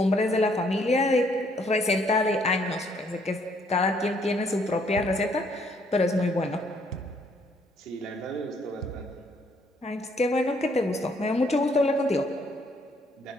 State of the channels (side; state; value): both; normal; correlation 0.67